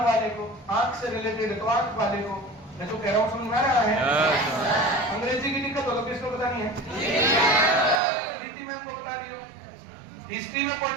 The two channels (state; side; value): drops out; left; at 8.0 s